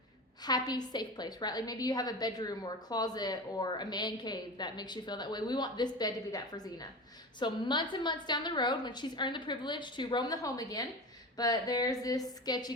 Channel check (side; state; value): both; normal; correlation 0.29